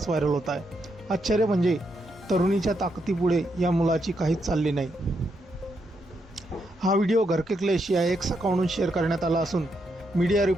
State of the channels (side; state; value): both; normal; correlation 0.80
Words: व्हायरल होत आहे. आश्चर्य म्हणजे तरुणीच्या ताकदीपुढे या मुलाची काहीच चालली नाही. हा व्हिडिओ घर के क्लेश या एक्स अकाउंटवरून शेअर करण्यात आला असून मीडिया